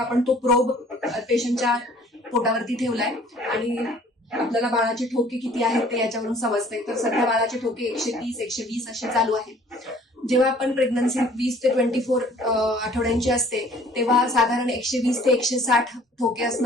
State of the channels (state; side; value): normal; both; correlation 0.54